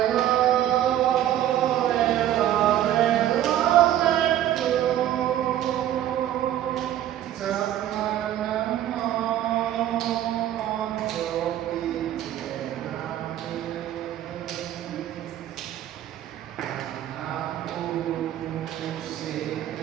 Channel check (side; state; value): left; quieter; 12.0 dB